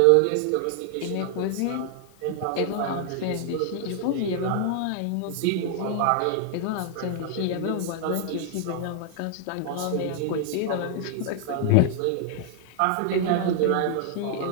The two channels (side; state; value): both; different; correlation 0.00